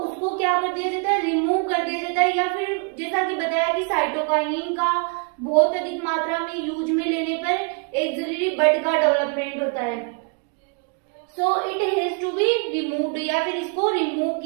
क्या कर दिया जाता है, रिमूव कर दिया जाता है, या फिर जैसा कि बताया कि साइटोकाइनिन का बहुत अधिक मात्रा में यूज में लेने पर एक्सिलरी बड का डेवलपमेंट होता है, so it has to be removed, या फिर इसको रिमूव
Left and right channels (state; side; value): quieter; left; 36.6 dB